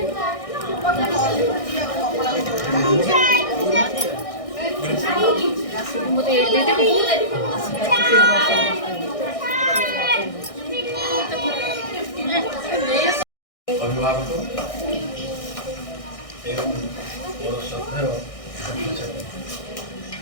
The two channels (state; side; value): late; right; 1.6 ms